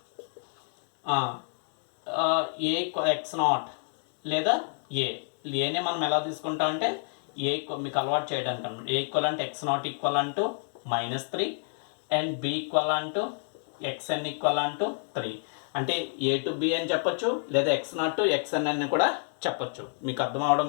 A x0 లేదా ఏనే మనం ఎలా తీసుకుంటాం అంటే ఏ మీకు అలవాటు చేయడానికి అనమాట. ఏ ఈక్వల్ అంటే x0 equal to -3 and b equal to xn equal to 3. అంటే a to b అని చెప్పొచ్చు, లేదా x0 to xn అని కూడా చెప్పొచ్చు. మీకు అర్థం అవడం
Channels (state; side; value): silent; right; 59 dB below the other